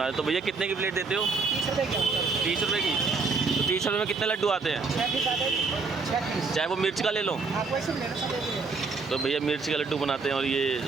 रहे। तो भैया कितने की प्लेट देते हो? 30 रुपये की। 30 रुपये की? तो 30 रुपये में कितने लड्डू आते हैं? 6 पीस। चाहे वो मिर्च का ले लो। तो भैया मिर्च का लड्डू बनाते हैं और ये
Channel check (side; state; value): left; quieter; 4.4 dB